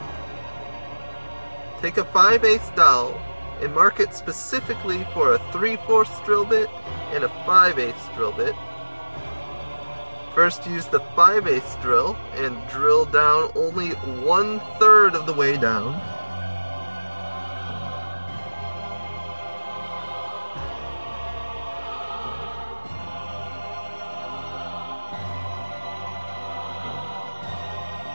Take a 5/8 dowel and mark it specifically for a 3/4 drill bit and a 5/8 drill bit. First, use the 5/8 drill and drill down only 1/3 of the way down.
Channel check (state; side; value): inverted; both; correlation -1.00